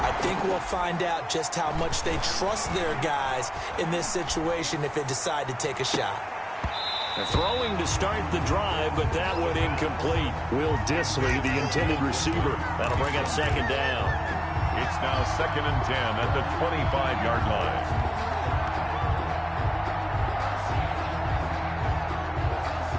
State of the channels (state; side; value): identical; both; correlation 1.00